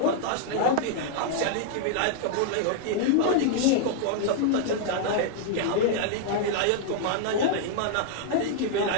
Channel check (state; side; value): different; both; correlation -0.01